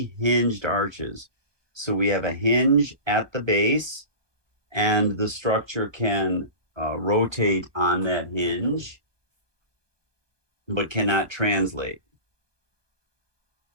hinged arches. So we have a hinge at the base, and the structure can rotate on that hinge, but cannot translate.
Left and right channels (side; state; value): left; late; 1.2 ms